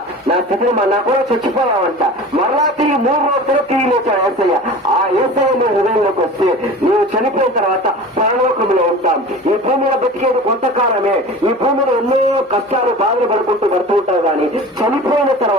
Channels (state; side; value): normal; both; correlation 0.37